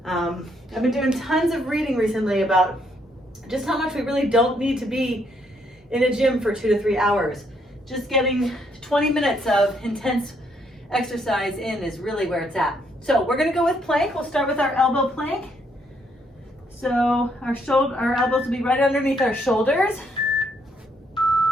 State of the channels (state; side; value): normal; both; correlation 0.72